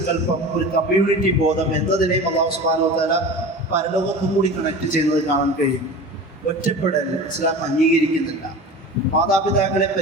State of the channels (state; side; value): normal; both; correlation 0.34